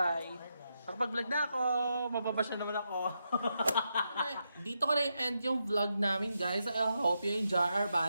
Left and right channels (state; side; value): inverted; both; correlation -0.84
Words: Nakapag-vlog na ako. Mababash na naman ako. Dito ko na i-end yung vlog namin guys. I hope you enjoy our